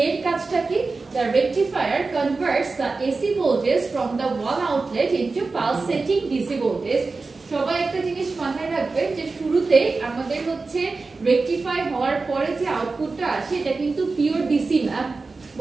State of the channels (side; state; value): left; quieter; 3.9 dB